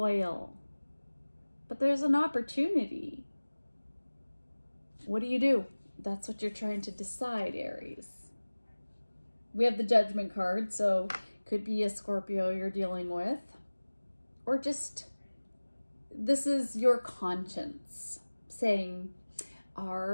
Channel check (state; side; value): inverted; both; correlation -1.00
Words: But there's an opportunity. What do? That's what you're trying to decide, Aries. We have the Judgment card, so could be a Scorpio you're dealing with, or just this is your conscience saying,